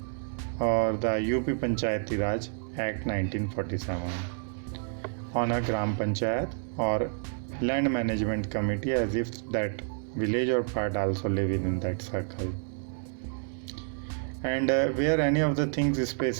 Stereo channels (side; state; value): left; silent; 58 dB below the other